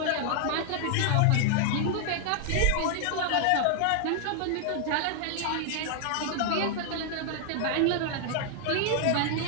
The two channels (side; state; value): both; different; correlation 0.00